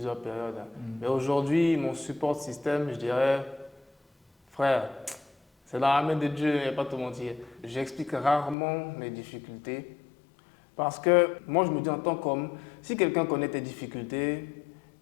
périodes. Mais aujourd'hui, mon support système, je dirais, frère, c'est dans la main de Dieu, il n'y a pas à te mentir. J'explique rarement mes difficultés parce que moi, je me dis en tant qu'homme, si quelqu'un connaît tes difficultés,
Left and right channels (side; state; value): right; drops out; at 8.6 s